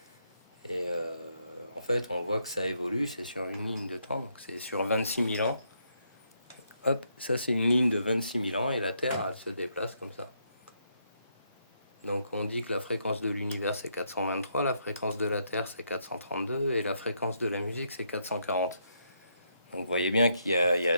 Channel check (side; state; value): both; inverted; correlation -0.76